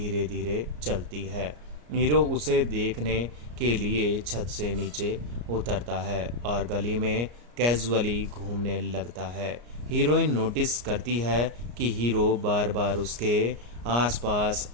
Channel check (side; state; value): left; late; 34 ms